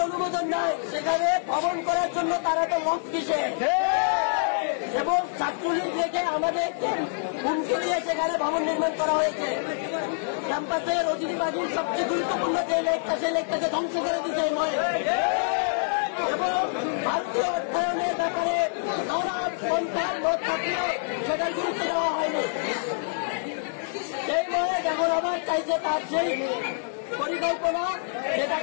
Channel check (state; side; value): silent; right; 61 dB below the other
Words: অনুমোদন নাই, সেখানে ভবন করার জন্য তারা তো মত কিসে এবং ছাত্রলীগ রেখে আমাদেরকে হুমকি দিয়ে সেখানে ভবন নির্মাণ করা হয়েছে। ক্যাম্পাসের অতিথিবাদীর সবচেয়ে গুরুত্বপূর্ণ যে লেকটা সেই লেকটাকে ধ্বংস করে দিতে এবং ভারতীয় অর্থায়নের ব্যাপারে নানা পন্থার মত থাকলেও সেটার গুরুত্ব দেওয়া হয়নি। সেই মনে এখন আমার চাইছে তার সেই পরিকল্পনা